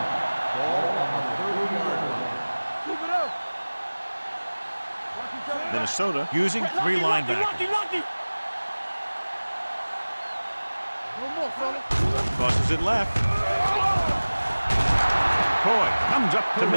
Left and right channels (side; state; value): both; inverted; correlation -1.00